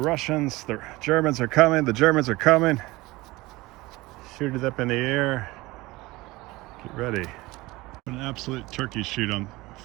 The Germans are coming. The Germans are coming. Shoot it up in the air. Get ready. An absolute turkey shoot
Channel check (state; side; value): quieter; left; 20.7 dB